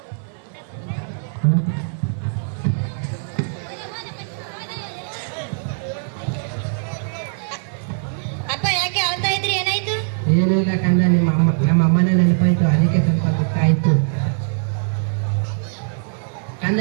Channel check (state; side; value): silent; left; digital silence